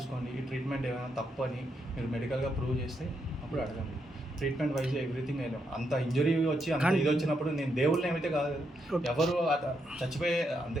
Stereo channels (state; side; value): normal; both; correlation 0.80